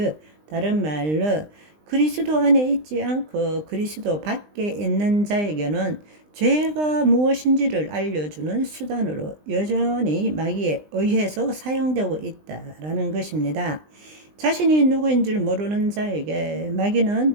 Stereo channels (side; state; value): left; late; 20 ms